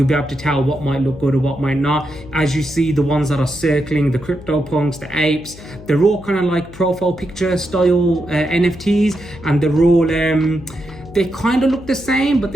be able to tell what might look good or what might not. As you see, the ones that are circling, the CryptoPunks, the apes, they're all kind of like profile picture style NFTs, and they're all they kind of look the same, but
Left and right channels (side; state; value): left; noise; hum, 18 dB below the sound